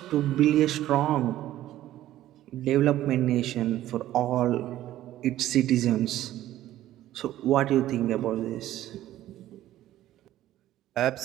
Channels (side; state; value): left; quieter; 13.6 dB